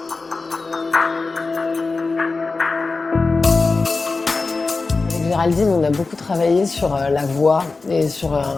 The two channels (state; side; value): quieter; right; 3.9 dB